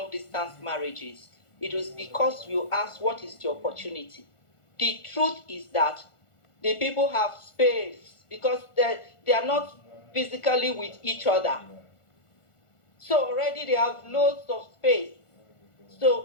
marriages, it was because you asked, what is the opportunity? The truth is that the people have space because they are not physically with each other. So already they have loads of space.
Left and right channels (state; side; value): late; right; 1.4 ms